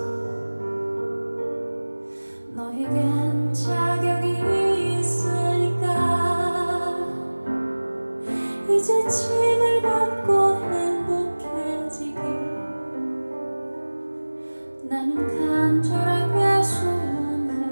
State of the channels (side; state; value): both; inverted; correlation -1.00